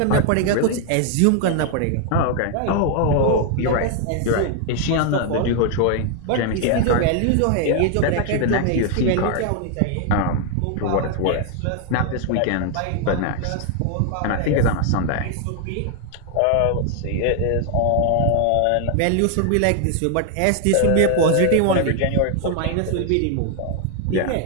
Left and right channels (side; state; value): both; different; correlation 0.00